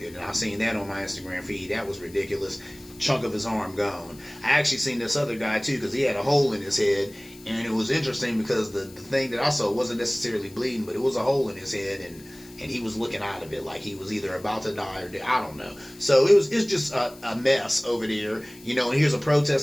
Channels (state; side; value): noise; left; hiss, 22 dB below the sound